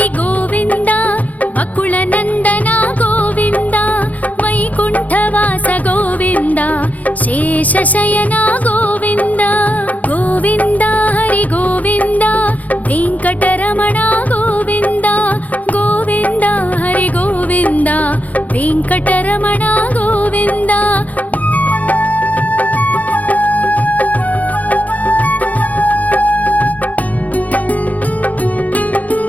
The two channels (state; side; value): late; right; 0.076 ms